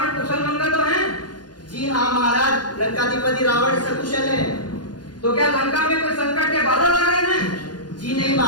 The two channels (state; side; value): late; right; 0.70 ms